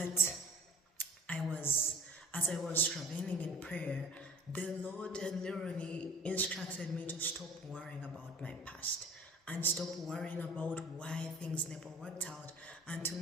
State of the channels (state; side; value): normal; both; correlation 0.45